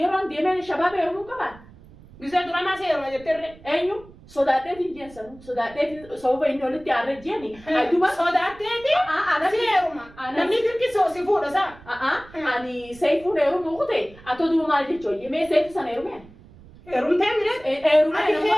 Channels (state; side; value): noise; right; rumble, 22 dB below the sound